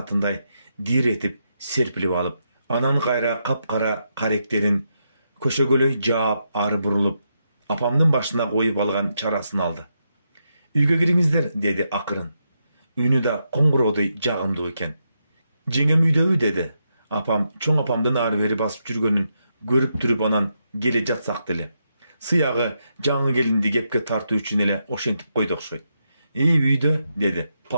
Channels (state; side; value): inverted; both; correlation -0.83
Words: диретип серпилип алып, анан кайра капкара каректерин көшөгөлөй жаап ары бурулуп, апамдын башына коюп алган чарасын алды. "Үйгө кириңиздер", деди акырын. Үнү да коңгуроодой жагымдуу экен. "Жеңем үйдөбү?" деди. Апам чоң апамдын ары бери басып жүргөнүн көрүп туруп анан келе жатсак деле. Сыягы жаңы келинди кепке тартуу үчүн эле ошентип койду окшойт. "Үйдө", деди